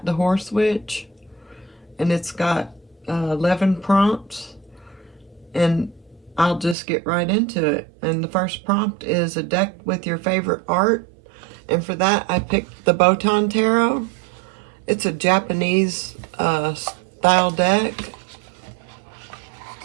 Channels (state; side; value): drops out; left; at 6.8 s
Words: the Horse Witch, and it's got 11 prompts, and I'll just get right into it. And the first prompt is a deck with your favorite art, and for that I picked the Botan Tarot. It's a Japanese style deck.